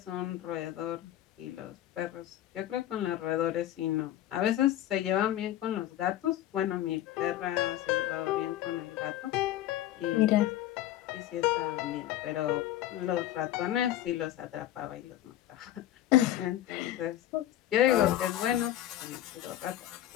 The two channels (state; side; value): quieter; right; 13.2 dB